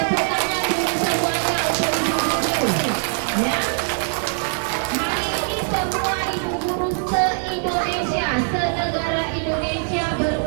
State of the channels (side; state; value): left; silent; 63 dB below the other